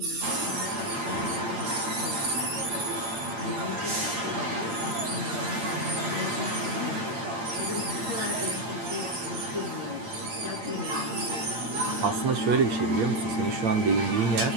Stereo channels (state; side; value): late; left; 8.7 ms